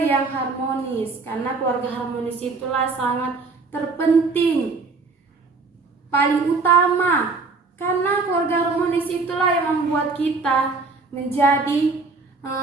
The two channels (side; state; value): left; quieter; 4.0 dB